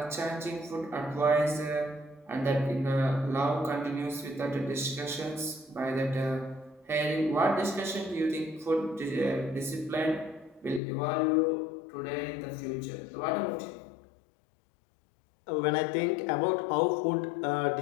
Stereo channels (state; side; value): drops out; right; at 10.8 s